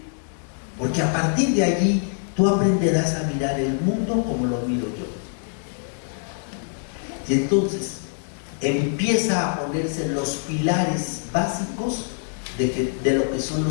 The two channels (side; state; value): right; silent; 63 dB below the other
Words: Porque a partir de allí tú aprenderás a mirar el mundo como lo miro yo. Y entonces empieza a ponerse los pilares básicos de lo que son